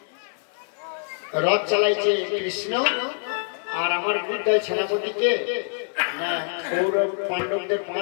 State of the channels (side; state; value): right; silent; 55 dB below the other